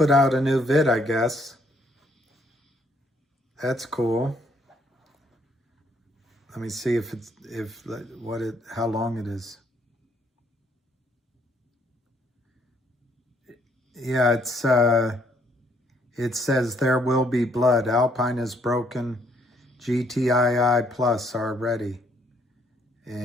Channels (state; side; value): normal; both; correlation 0.68